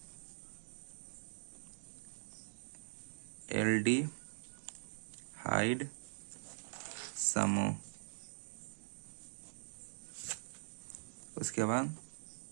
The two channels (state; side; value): silent; left; digital silence